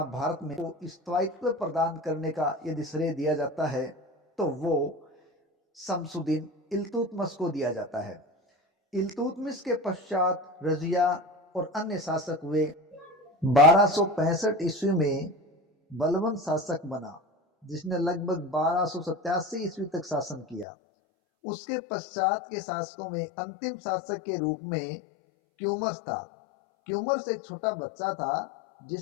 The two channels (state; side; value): drops out; right; at 20.7 s